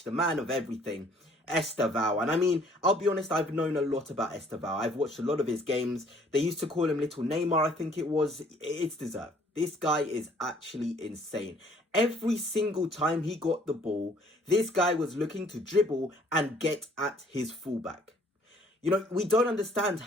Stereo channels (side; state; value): both; normal; correlation 0.59